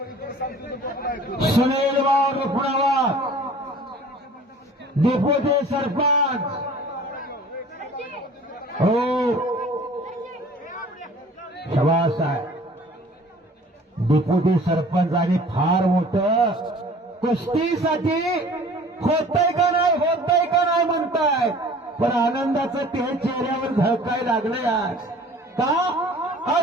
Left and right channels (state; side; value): normal; both; correlation 0.48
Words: सुनील वाघ पुणावर डेप्युटी सरपंच. हो शबास आहे. डेप्युटी सरपंच आणि फार मोठं कुस्तीसाठी होतंय का नाही म्हणताय. पण आनंदाचं ते चेहऱ्यावर झळकाय लागलं यार. का